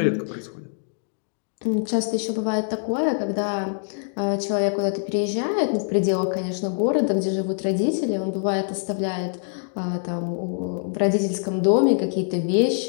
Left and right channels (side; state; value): right; silent; digital silence